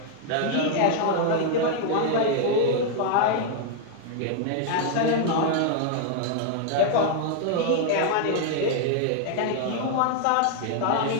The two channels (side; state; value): both; different; correlation 0.00